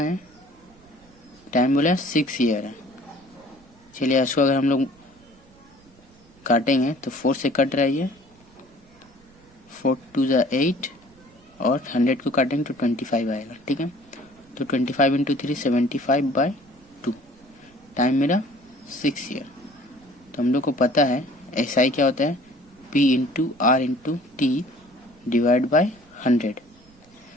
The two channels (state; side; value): noise; right; rumble, 28 dB below the sound